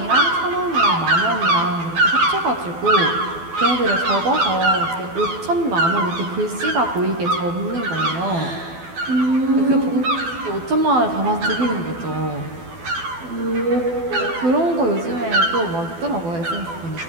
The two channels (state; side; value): late; left; 12 ms